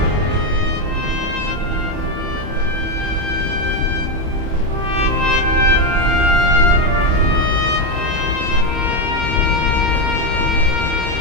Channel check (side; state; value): left; late; 28 ms